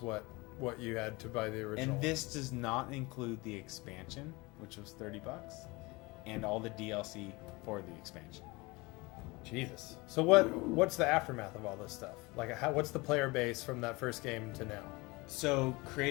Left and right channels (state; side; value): quieter; right; 24.3 dB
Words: what you had to buy the original. And this does not include the expansion, which was $30, and all the DLC for the expansion. Jesus. So what's the aftermath of all this stuff? Like, what's the player base from that first game to now? So